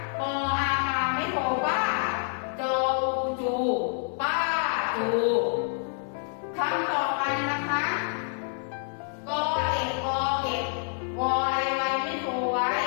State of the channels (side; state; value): right; silent; 60 dB below the other